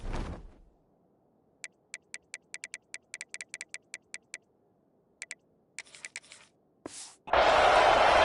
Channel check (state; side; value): identical; both; correlation 1.00